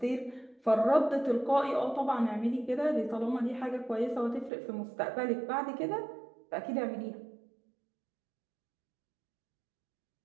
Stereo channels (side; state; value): left; drops out; at 4.5 s